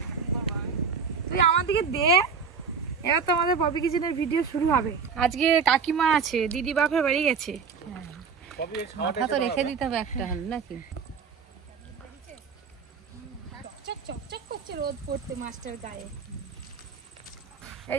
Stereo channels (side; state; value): left; quieter; 5.7 dB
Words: তুই আমার দিকে দে। এবার তো আমাদের পপি কিচেনের ভিডিও শুরু হবে। আজকে কাকিমা আছে, দিদি বাপের বাড়ি গেছে। মাথা তো রেখে দিতে হবে একটা নাকি। রোদ পড়তে মাছটার গায়ে।